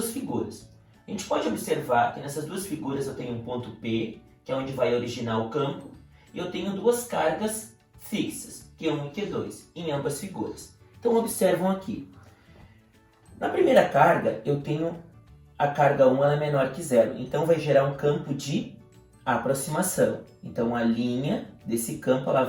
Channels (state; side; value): identical; both; correlation 1.00